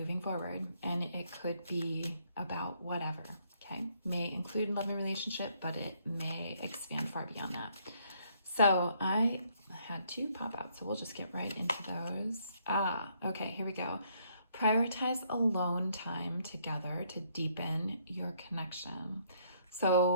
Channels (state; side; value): inverted; both; correlation -0.69